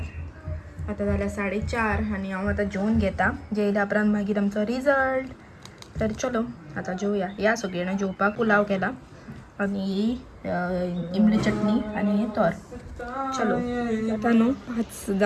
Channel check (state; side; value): identical; both; correlation 1.00